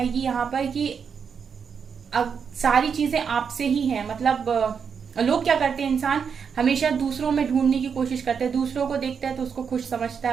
यहाँ पर कि अब सारी चीजें आपसे ही हैं। मतलब लोग क्या करते हैं, इंसान हमेशा दूसरों में ढूंढने की कोशिश करते हैं, दूसरों को देखता है तो उसको खुश समझता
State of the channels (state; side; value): quieter; left; 6.6 dB